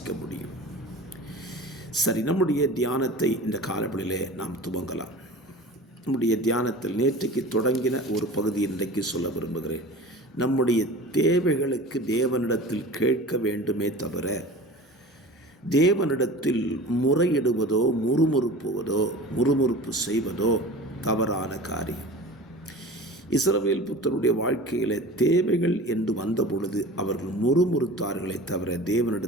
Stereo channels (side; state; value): both; normal; correlation 0.38